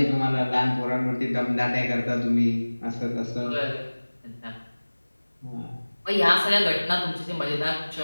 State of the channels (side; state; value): both; inverted; correlation -1.00